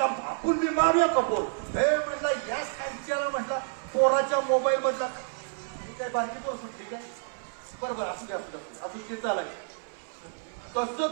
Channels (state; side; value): silent; left; 58 dB below the other